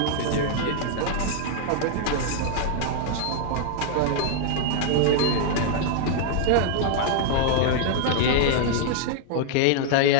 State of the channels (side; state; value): both; different; correlation 0.00